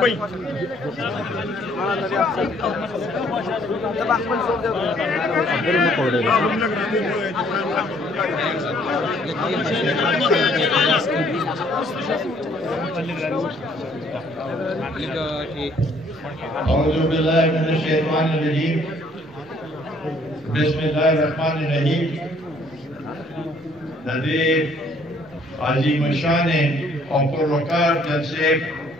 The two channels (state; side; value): normal; both; correlation 0.62